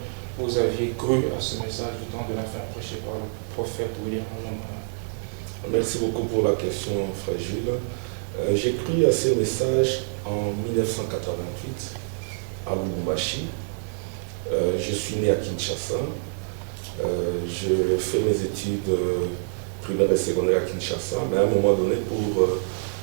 vous aviez cru à ce message du temps de la fin prêché par le prophète William Marion Branham? Merci beaucoup pour la question, frère Gilles. J'ai cru à ce message en 1988 à Lubumbashi. Je suis né à Kinshasa. Je fais mes études primaires et secondaires à Kinshasa, mais à un moment donné, pour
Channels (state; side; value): silent; left; digital silence